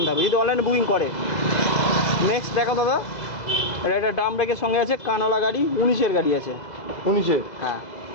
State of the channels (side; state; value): right; late; 2.0 ms